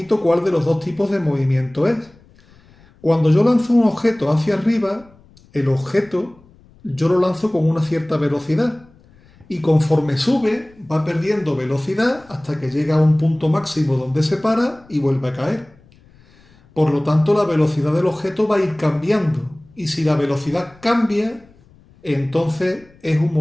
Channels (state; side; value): noise; left; rumble, 28 dB below the sound